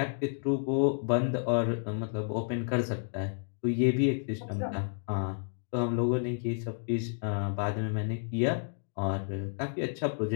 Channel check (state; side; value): silent; right; digital silence